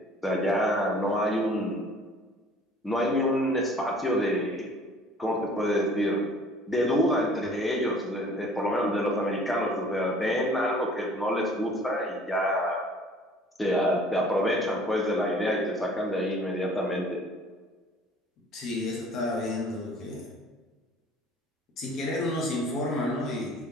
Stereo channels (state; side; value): normal; both; correlation 0.51